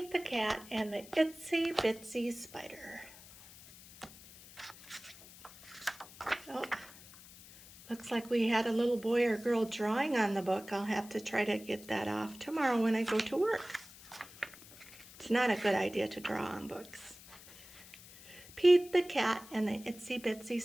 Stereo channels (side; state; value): left; noise; hiss, 19 dB below the sound